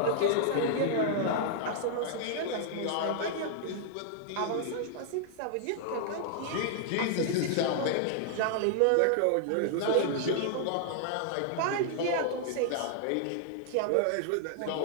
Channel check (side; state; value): both; different; correlation -0.01